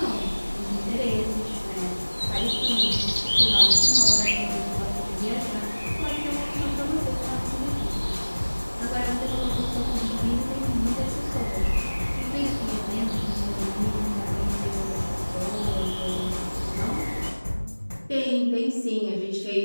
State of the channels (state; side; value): inverted; both; correlation -1.00